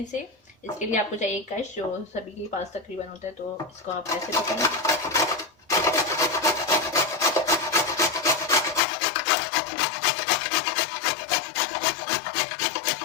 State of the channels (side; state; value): right; drops out; at 8.8 s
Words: से। इसके लिए आपको चाहिए कश, जो सभी के पास तकरीबन होता है। तो इसको आप ऐसे पकड़ें।